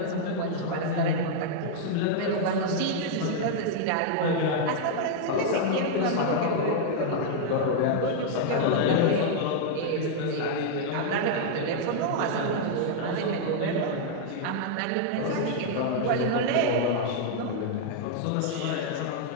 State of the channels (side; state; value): both; different; correlation -0.01